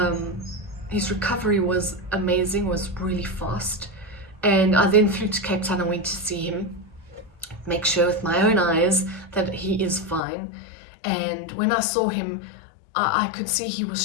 his recovery was amazing, was really fast. And I then flew to Cape Town and went to see him, make sure with my own eyes that he is fine. And when I saw him, I could see he was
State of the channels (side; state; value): right; drops out; at 10.2 s